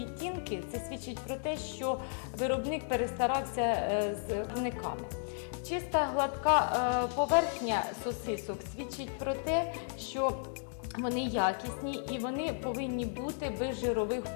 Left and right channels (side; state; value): right; silent; digital silence